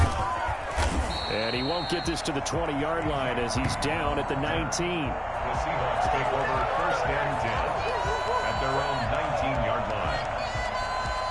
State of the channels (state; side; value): identical; both; correlation 1.00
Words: And he won't get this to the 20-yard line as he's down at the 19. The Seahawks take over first and 10 at their own 19-yard line.